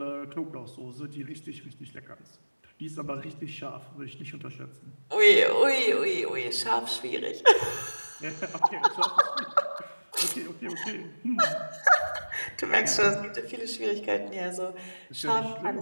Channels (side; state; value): both; inverted; correlation -1.00